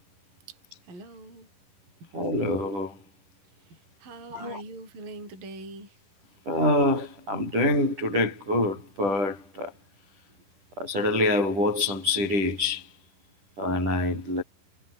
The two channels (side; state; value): left; late; 10 ms